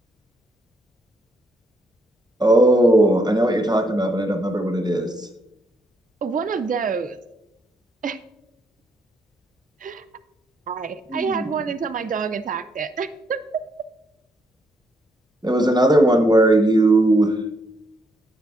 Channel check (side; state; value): both; normal; correlation 0.74